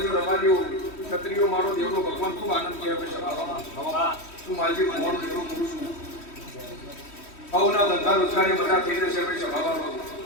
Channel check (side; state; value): right; late; 3.1 ms